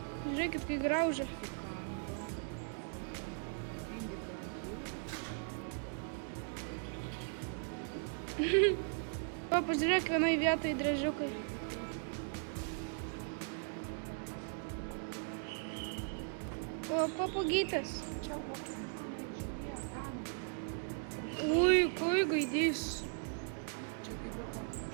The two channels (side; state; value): left; silent; 52 dB below the other